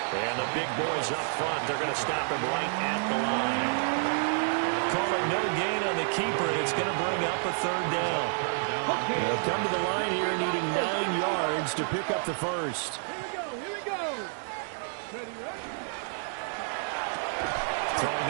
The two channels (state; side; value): silent; left; 58 dB below the other